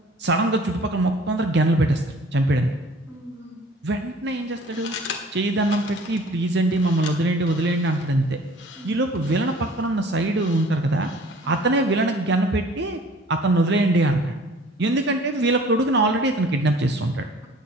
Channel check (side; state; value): both; normal; correlation 0.50